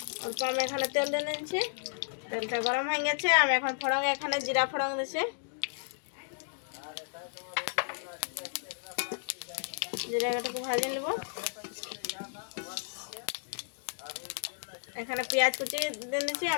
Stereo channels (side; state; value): right; silent; digital silence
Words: অল্প আমি এখানে তেল দিয়ে নিচ্ছি। তেলটা গরম হয়ে গেছে, আমি এখন ফোড়ন এখানে জিরা ফোড়ন দিচ্ছি। জিরাটাকে ভাজে নেব। এখানে পেঁয়াজ কুচি দিয়ে দিচ্ছি।